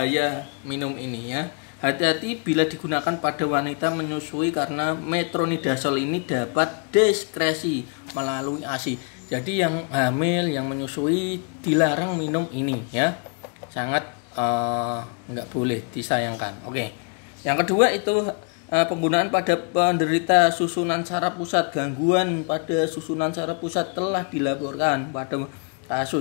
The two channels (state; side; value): quieter; right; 36.6 dB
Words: minum ini ya. Hati-hati bila digunakan pada wanita menyusui karena metronidazole ini dapat diskresi melalui ASI. Jadi yang hamil, yang menyusui dilarang minum ini ya. Sangat nggak boleh, disayangkan. Oke. Yang kedua itu penggunaan pada penderita susunan saraf pusat. Gangguan pada susunan saraf pusat telah dilaporkan pada